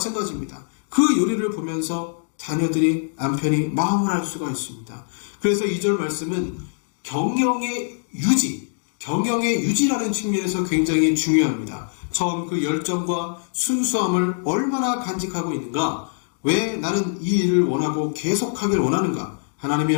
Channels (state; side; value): silent; right; digital silence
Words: 그 요리를 보면서 자녀들이, 남편이 마음을 알 수가 있습니다. 그래서 2절 말씀은 경영의 유지라는 측면에서 굉장히 중요합니다. 처음 그 열정과 순수함을 얼마나 간직하고 있는가? 왜 나는 이 일을 원하고 계속하길 원하는가? 하나님의